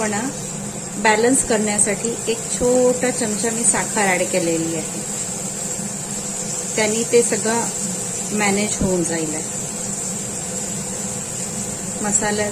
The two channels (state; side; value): identical; both; correlation 1.00